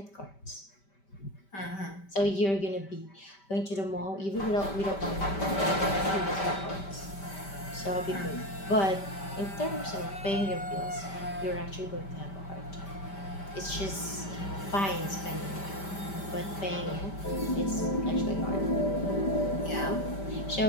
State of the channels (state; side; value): late; right; 5.1 ms